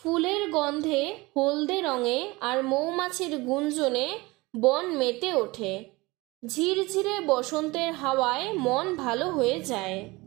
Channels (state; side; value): quieter; left; 22.6 dB